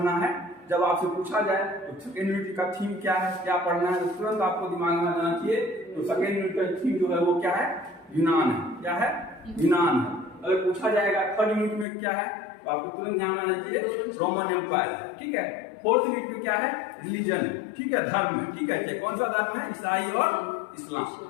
है। जब आपसे पूछा जाए तो सेकेंड यूनिट का थीम क्या है, क्या पढ़ना है, तो तुरंत आपको दिमाग में आना चाहिए। तो सेकेंड यूनिट का थीम जो है वो क्या है, यूनान है। क्या है, यूनान है। अगर पूछा जाएगा थर्ड यूनिट में क्या है, तो आपको तुरंत ध्यान में आना चाहिए रोमन एम्पायर, ठीक है। फोर्थ यूनिट में क्या है, रिलीजन, ठीक है, धर्म, ठीक है। कौन सा धर्म है, ईसाई और इस्लाम।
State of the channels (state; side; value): drops out; right; at 11.9 s